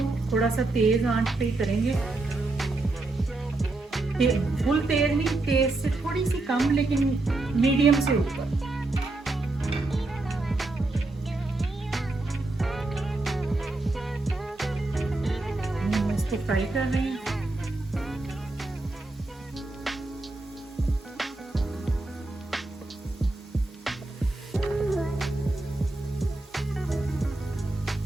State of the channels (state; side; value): quieter; left; 3.0 dB